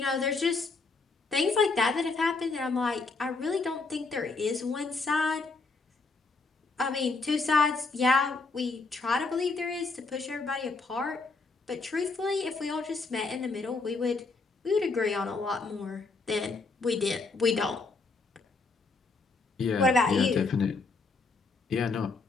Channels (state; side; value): quieter; right; 3.9 dB